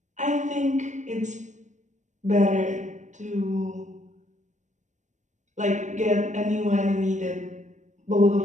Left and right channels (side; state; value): left; late; 0.35 ms